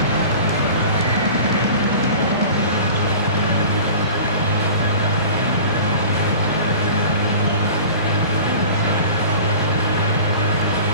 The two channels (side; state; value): both; inverted; correlation -0.40